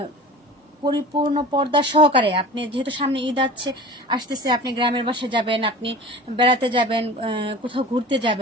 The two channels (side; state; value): both; normal; correlation 0.37